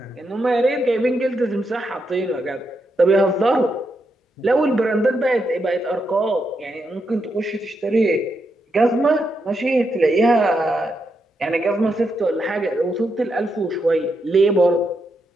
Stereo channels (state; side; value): normal; both; correlation 0.82